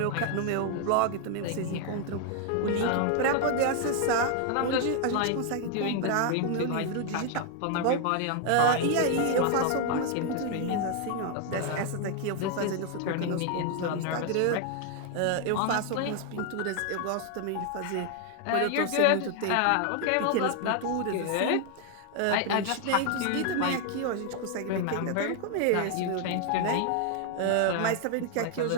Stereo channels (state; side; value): different; both; correlation 0.00